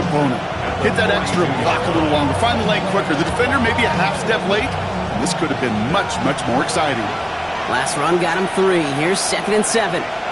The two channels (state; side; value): identical; both; correlation 1.00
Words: Hit that extra block a little longer. Find the lane quicker. The defender maybe a half step late. And this could have been much, much more exciting. Last run got him 3. Here's 2nd and 7.